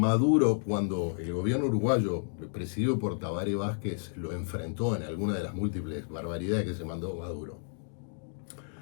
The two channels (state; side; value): silent; right; digital silence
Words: cuando el gobierno uruguayo, presidido por Tabaré Vázquez, lo enfrentó en alguna de las múltiples barbaridades que se mandó Maduro?